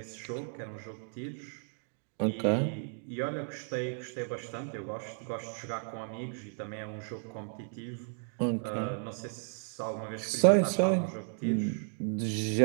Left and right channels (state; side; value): silent; left; 55 dB below the other